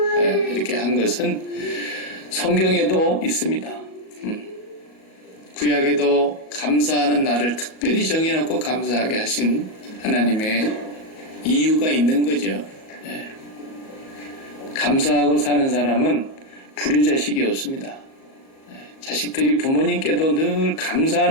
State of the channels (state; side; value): late; right; 37 ms